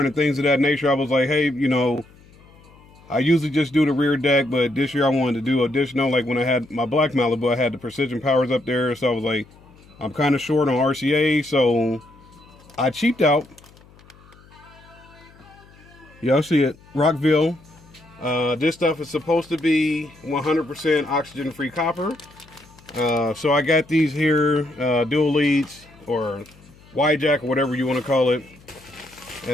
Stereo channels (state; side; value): noise; left; hum, 26 dB below the sound